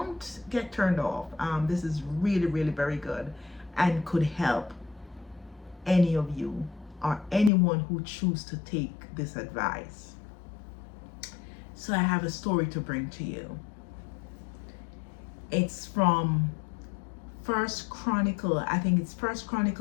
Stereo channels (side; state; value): right; drops out; at 7.5 s